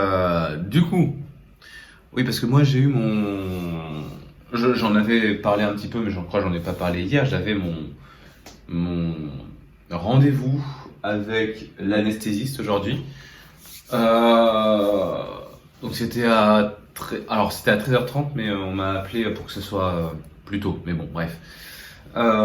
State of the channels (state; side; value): identical; both; correlation 1.00